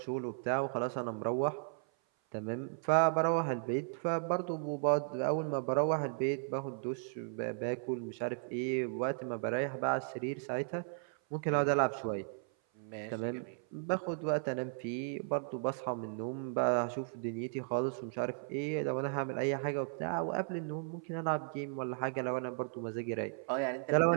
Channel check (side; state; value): left; silent; 54 dB below the other